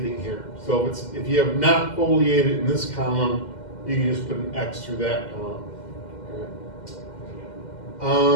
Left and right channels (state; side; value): late; right; 2.1 ms